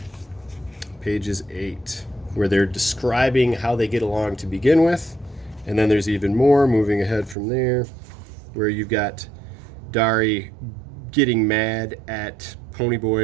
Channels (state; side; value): drops out; left; at 7.4 s